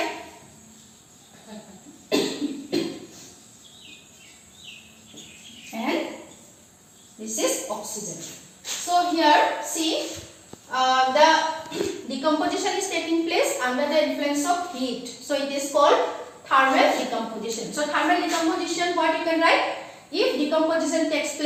and this is oxygen. So here see the decomposition is taking place under the influence of heat. So it is called thermal decomposition. So thermal decomposition, what you can write? If decomposition takes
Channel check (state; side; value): identical; both; correlation 1.00